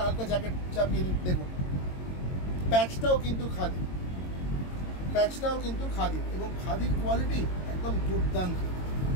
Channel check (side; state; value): right; late; 22 ms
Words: হালকা জ্যাকেট চাপিয়ে নিন। দেখুন প্যাচটাও কিন্তু খাদি, প্যাচটাও কিন্তু খাদি, এবং খাদির কোয়ালিটি একদম দুর্দান্ত,